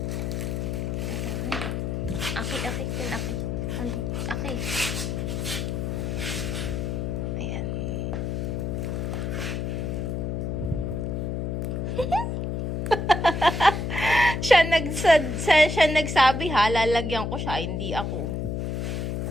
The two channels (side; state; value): left; noise; hum, 1 dB below the sound